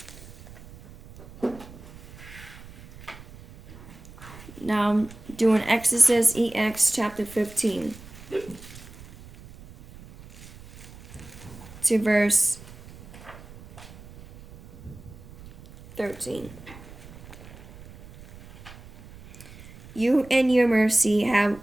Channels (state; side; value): noise; right; rumble, 18 dB below the sound